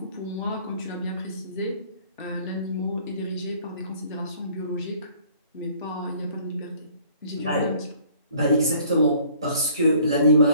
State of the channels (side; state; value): both; inverted; correlation -0.56